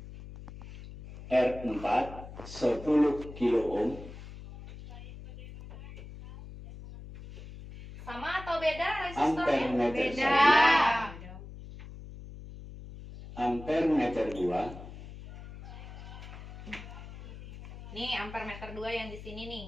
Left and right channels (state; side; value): noise; left; hum, 14 dB below the sound